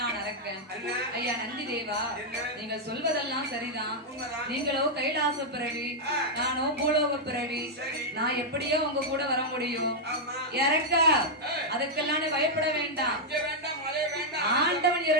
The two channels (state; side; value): normal; both; correlation -0.04